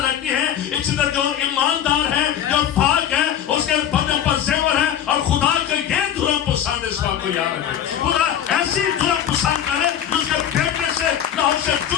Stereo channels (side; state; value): right; quieter; 10.0 dB